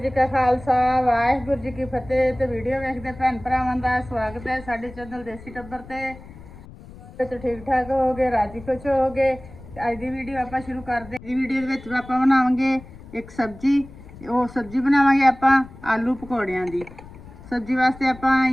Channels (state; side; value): noise; left; rumble, 18 dB below the sound